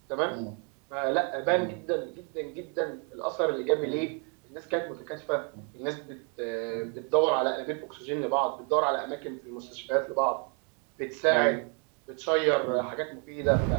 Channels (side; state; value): left; quieter; 37.8 dB